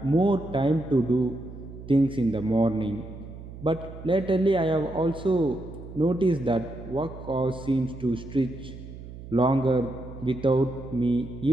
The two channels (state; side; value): noise; right; hum, 13 dB below the sound